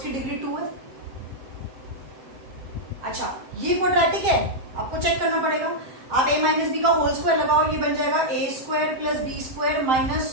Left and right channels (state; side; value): late; left; 7.5 ms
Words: डिग्री 2 है। अच्छा, ये क्वाड्रेटिक है, आपको चेक करना पड़ेगा। आप a माइनस बी का होल स्क्वायर लगाओ, ये बन जाएगा a square plus B square